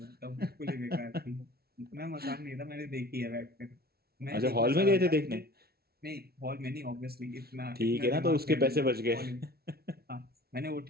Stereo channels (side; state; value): left; late; 0.45 ms